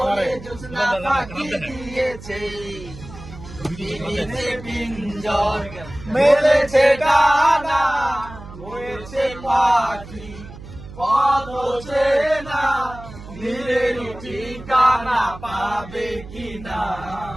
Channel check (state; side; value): noise; right; hum, 15 dB below the sound